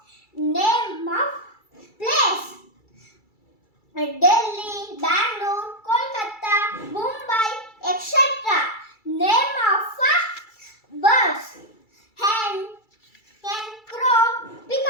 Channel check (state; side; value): late; right; 2.3 ms